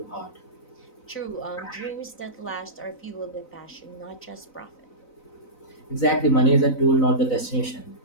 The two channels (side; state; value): right; late; 4.0 ms